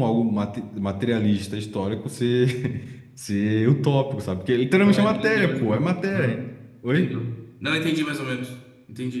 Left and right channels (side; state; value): both; identical; correlation 1.00